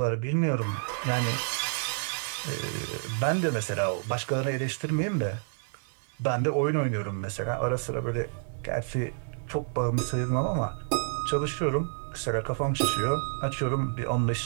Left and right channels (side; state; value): left; silent; 58 dB below the other